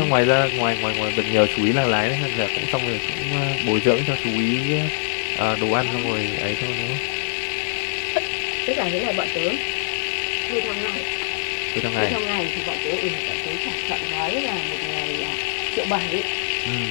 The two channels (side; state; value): right; silent; digital silence